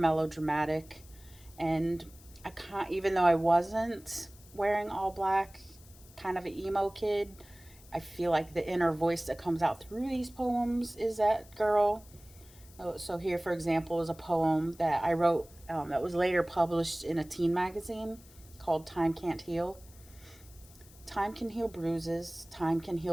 And I can't, even though I wasn't wearing all black, kind of an emo kid, I feel like the inner voice that comes out through these poems is that girl. So here, for example, is a poem that I wrote that was later published in a teen magazine called Time Can't Heal. Time can heal bruises, time can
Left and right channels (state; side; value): noise; left; hiss, 23 dB below the sound